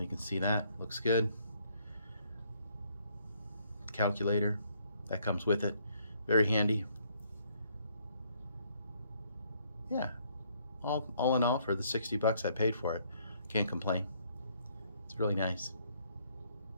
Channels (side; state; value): both; inverted; correlation -0.68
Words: can see that looks good. Calculator that comes with it, very handy. Yeah, all in all, for the $60 I paid for it, can't complain. It's really nice,